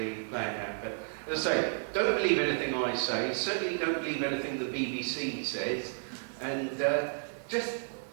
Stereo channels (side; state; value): left; silent; 56 dB below the other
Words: play it at. But as I say, don't believe anything I say. Certainly don't believe anything the BBC says. And just,